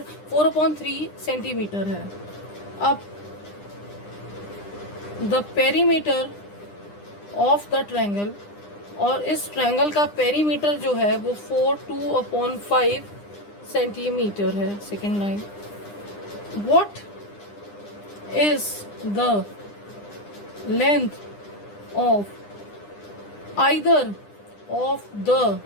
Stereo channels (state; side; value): late; right; 9.9 ms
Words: centimetre है. अब the perimeter of the triangle, और इस triangle का perimeter जो है वो 2/5 सेंटीमीटर है. Second line, what is the length of either of the